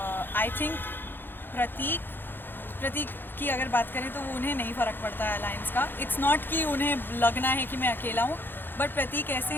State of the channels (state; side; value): late; right; 0.098 ms